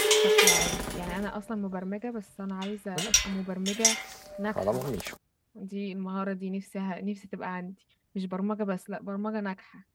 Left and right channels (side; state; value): both; identical; correlation 1.00